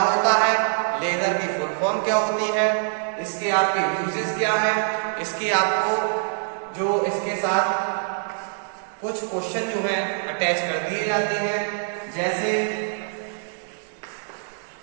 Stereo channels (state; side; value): silent; left; digital silence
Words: है, लेजर की फुल फॉर्म क्या होती है, इसके आपके यूजेस क्या है, इसके आपको जो इसके साथ कुछ क्वेश्चन जो है अटैच कर दिए जाते हैं, जैसे